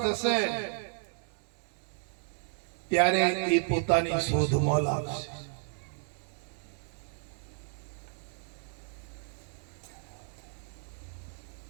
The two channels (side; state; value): left; silent; 55 dB below the other